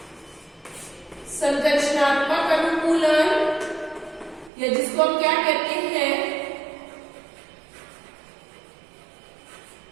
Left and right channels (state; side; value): drops out; left; at 4.5 s